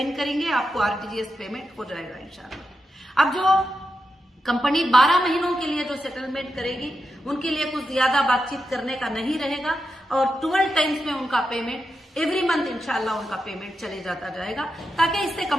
करेंगे, आपको आरटीजीएस पेमेंट हो जाएगा इंशाल्लाह। अब जो कंपनी 12 महीनों के लिए जो सेटलमेंट करेगी उनके लिए कुछ ज्यादा बातचीत करने का नहीं रहेगा और 12 टाइम्स में उनका पेमेंट एवरी मंथ इंशाल्लाह उनका पेमेंट चले जाता जाएगा, ताकि इससे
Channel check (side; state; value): both; normal; correlation 0.87